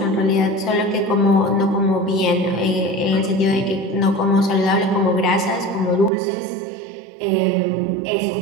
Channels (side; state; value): left; drops out; at 6.1 s